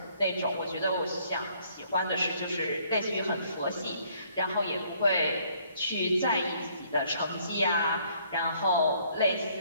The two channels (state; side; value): inverted; both; correlation -0.64